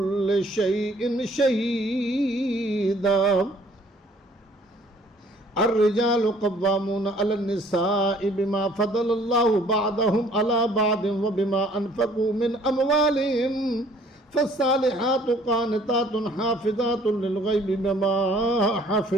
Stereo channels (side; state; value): both; normal; correlation 0.58